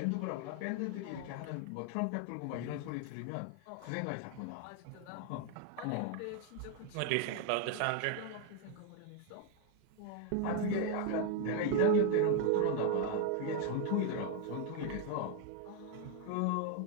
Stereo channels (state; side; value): different; both; correlation 0.01